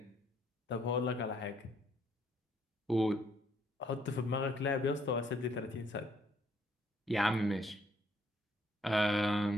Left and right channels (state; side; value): normal; both; correlation 0.67